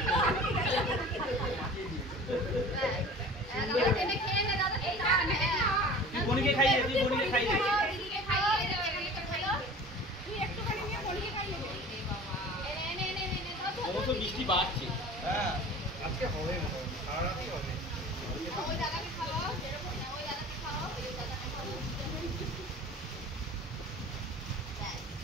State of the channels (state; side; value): normal; both; correlation 0.41